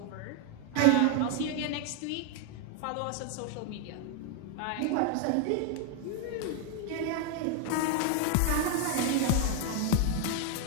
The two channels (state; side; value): different; both; correlation 0.00